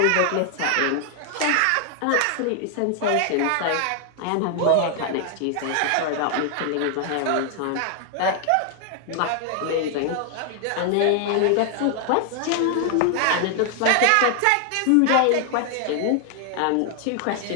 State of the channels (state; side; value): different; both; correlation 0.00